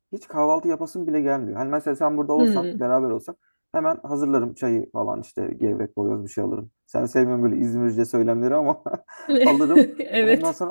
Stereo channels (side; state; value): both; inverted; correlation -1.00